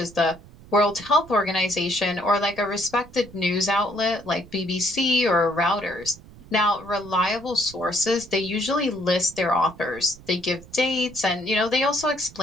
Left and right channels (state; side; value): noise; right; rumble, 20 dB below the sound